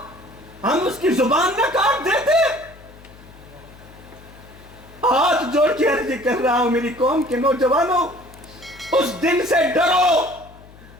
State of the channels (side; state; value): left; noise; hum, 22 dB below the sound